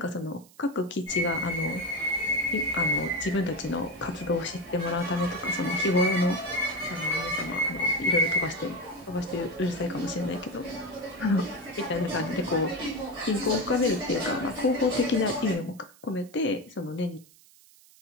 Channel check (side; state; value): right; noise; hiss, 26 dB below the sound